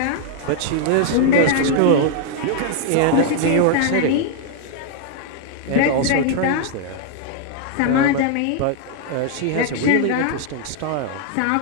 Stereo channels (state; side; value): different; both; correlation 0.00